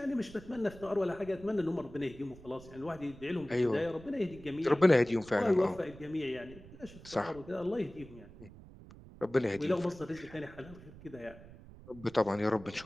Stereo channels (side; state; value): right; noise; rumble, 18 dB below the sound